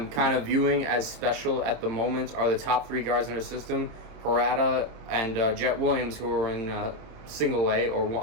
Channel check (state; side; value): late; left; 27 ms